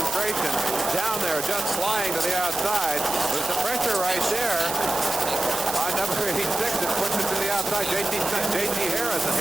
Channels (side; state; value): right; noise; hiss, 7 dB below the sound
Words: Down there, just flying to the outside. There's the pressure right there on number 86 that puts it to the outside. J.T. Harrison.